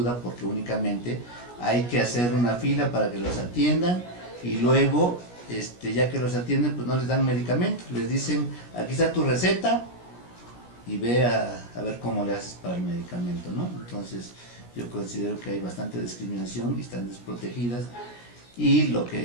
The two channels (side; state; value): right; late; 17 ms